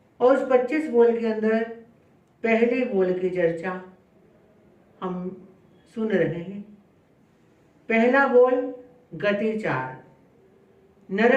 और उस 25 बोल के अंदर पहले बोल की चर्चा हम सुन रहे हैं। पहला बोल गति 4,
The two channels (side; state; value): both; identical; correlation 1.00